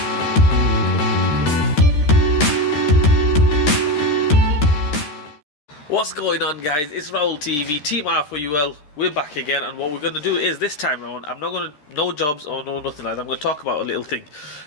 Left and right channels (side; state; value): right; late; 13 ms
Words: going on, guys? It's Raul TV, Team Flywheel. We're back again, and what we're going to do is, this time around, I'm not going to, no jobs or no nothing like that. I'm going to talk about a little thing,